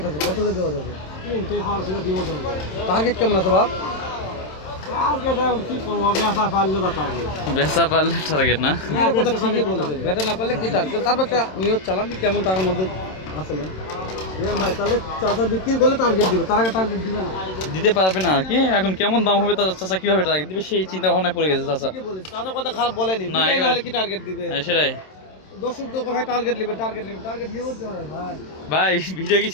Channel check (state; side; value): late; right; 27 ms